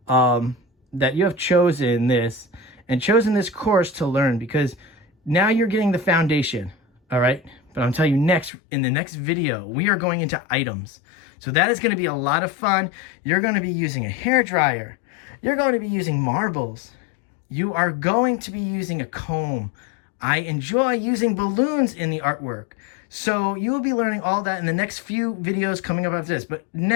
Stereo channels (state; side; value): drops out; right; at 8.5 s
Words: that you have chosen this and chosen this course to learn, because now you're getting the foundation, all right? But I'm telling you, in the next video, we are going into items. So that is going to be a lot of fun. You're going to be using a hairdryer. You're going to be using marbles. You are going to be using a comb. I enjoy using balloons in the artwork. So you will be learning all that in the next few videos coming up after this. But